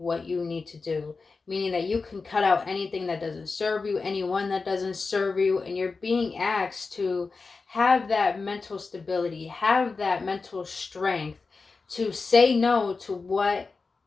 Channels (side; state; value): right; quieter; 4.3 dB